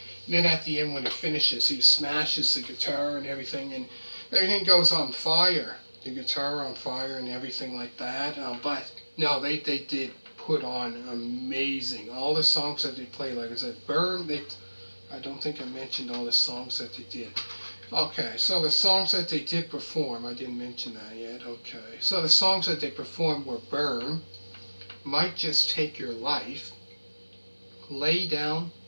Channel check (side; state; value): both; inverted; correlation -1.00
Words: And then at the end, when it finishes, he smashes the guitar and everything goes on fire. The guitar on fire and everything like that. But no, they did put on amazing. All the songs that they played, like I said, Burn. I don't think I mentioned all the songs that they did. Okay, so the songs that they did perform, I didn't mention that yet. Okay, so the songs that they performed were Burn, Might Just Take Your Life, Lay Down,